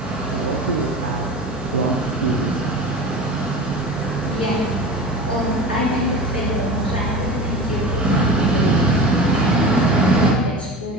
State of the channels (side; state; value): both; normal; correlation 0.32